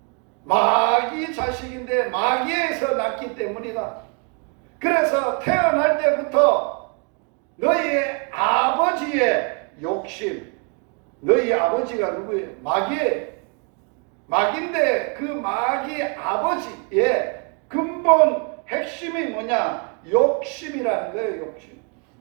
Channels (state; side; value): quieter; left; 37.6 dB